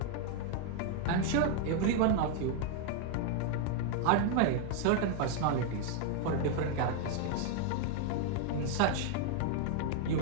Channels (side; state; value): both; different; correlation 0.00